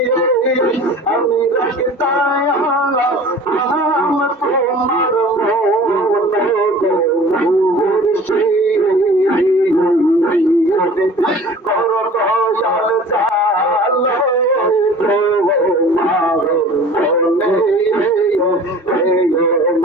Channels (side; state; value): both; normal; correlation 0.44